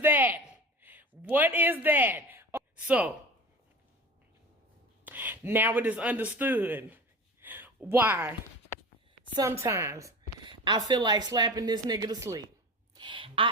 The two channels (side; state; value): both; normal; correlation 0.34